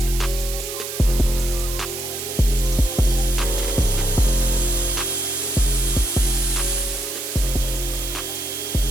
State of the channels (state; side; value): noise; right; hiss, 7 dB below the sound